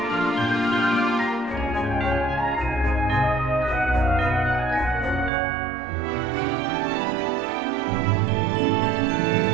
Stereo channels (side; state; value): left; drops out; at 5.3 s